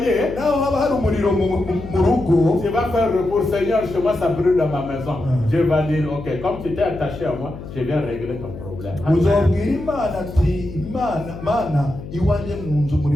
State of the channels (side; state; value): left; noise; hum, 12 dB below the sound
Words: tu vas faire recours. Seigneur, chez moi ça brûle dans ma maison. Dieu va dire, ok, comme tu t'es attaché à moi, je viens régler ton problème. Iwanje munzu